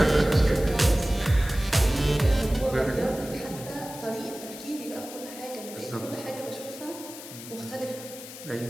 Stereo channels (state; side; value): noise; left; hiss, 13 dB below the sound